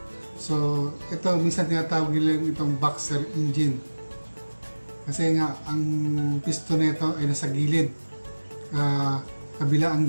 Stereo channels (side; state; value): both; inverted; correlation -1.00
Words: So, ito, minsan tinatawag nila itong boxer engine. Kasi nga, ang piston nito ay nasa gilid. Kabila ang